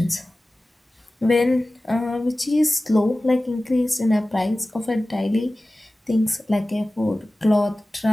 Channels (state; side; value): normal; both; correlation 0.96